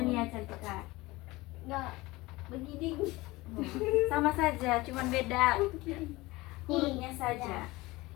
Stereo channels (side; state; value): right; quieter; 20.7 dB